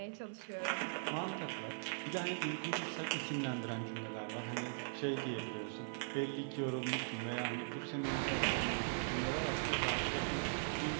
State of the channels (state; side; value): silent; left; 51 dB below the other